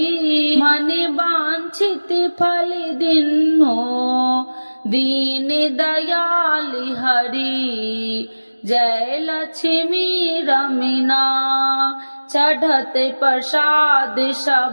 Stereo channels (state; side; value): inverted; both; correlation -1.00